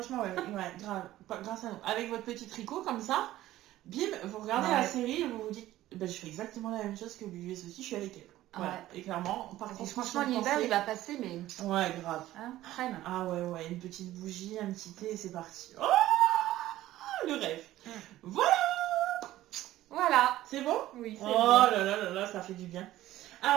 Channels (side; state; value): left; quieter; 14.9 dB